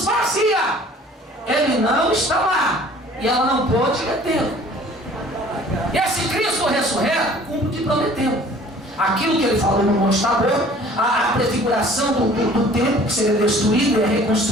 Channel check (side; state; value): both; normal; correlation 0.51